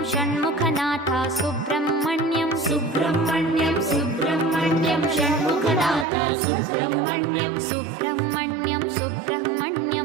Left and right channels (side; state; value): left; drops out; at 6.1 s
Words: षण्मुखनाथा सुब्रह्मण्यं सुब्रह्मण्यं सुब्रह्मण्यं षण्मुखनाथा सुब्रह्मण्यं सुब्रह्मण्यं